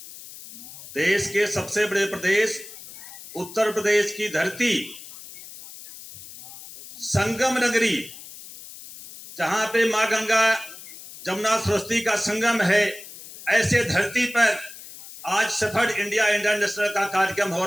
देश के सबसे बड़े प्रदेश उत्तर प्रदेश की धरती, संगम नगरी, जहां पे मां गंगा जमुना सरस्वती का संगम है, ऐसे धरती पर आज सफल इंडिया इंटरनेशनल का कार्यक्रम हो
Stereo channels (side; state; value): left; noise; hiss, 15 dB below the sound